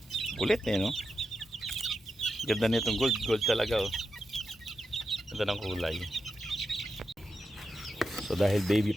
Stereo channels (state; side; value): normal; both; correlation 0.87